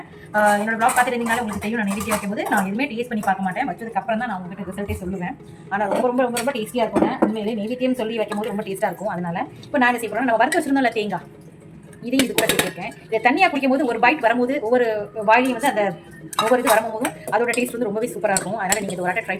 என்னோட ப்ளாக் பார்த்துட்டு இருந்தீங்களா உங்களுக்கு தெரியும். நான் நெய்வேத்தியம் வைக்கும்போது நான் எதுவுமே டேஸ்ட் பண்ணி பார்க்க மாட்டேன். வச்சதுக்கப்புறம் தான் நான் உங்களுக்கு ரிசல்ட்டே சொல்லுவேன். ஆனால் ரொம்ப ரொம்ப ரொம்ப ரொம்ப டேஸ்ட்டியாக இருக்குங்க. உண்மையிலே நெய்வேத்தியம் சொல்லி வைக்கும்போது ரொம்ப டேஸ்ட்டாக இருக்கும். அதனால் இப்போ நான் என்ன செய்ய போகிறேன், நம்ம வறுத்து வச்சிருந்தோம்ல தேங்காய், இதையும் இது கூட சேர்த்துருக்கேன். இதை தண்ணியாக குடிக்கும் போது ஒரு பைட் வரும்போது ஒவ்வொரு வாயிலையும் வந்து அந்த ஒவ்வொரு இது வரும்போதும் அதோட டேஸ்ட் வந்து ரொம்பவே சூப்பராக இருக்கும். அதனால் நீங்கள் இது ஒரு வாட்டி ட்ரை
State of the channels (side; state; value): both; identical; correlation 1.00